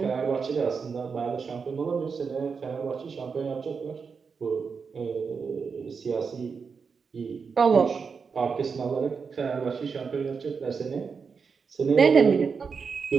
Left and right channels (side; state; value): left; quieter; 5.6 dB